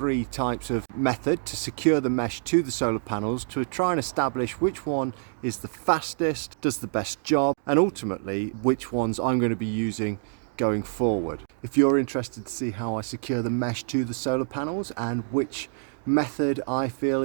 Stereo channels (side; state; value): left; silent; digital silence